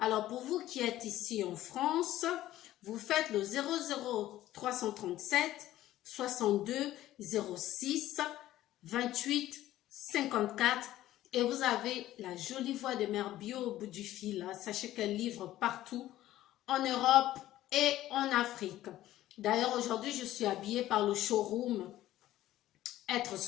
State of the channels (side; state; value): right; quieter; 14.4 dB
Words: pour vous qui êtes ici en France, vous faites le 00 337 62 06 28 54 et vous avez la jolie voix de Mère Bio au bout du fil. Sachez qu'elle livre partout en Europe et en Afrique. D'ailleurs, aujourd'hui, je suis habillée par le showroom Être